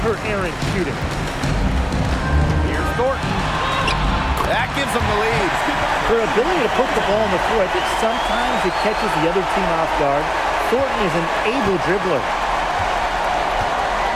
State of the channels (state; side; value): identical; both; correlation 1.00